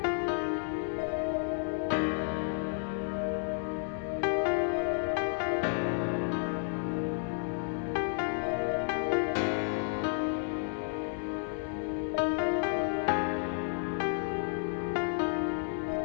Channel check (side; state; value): right; silent; 57 dB below the other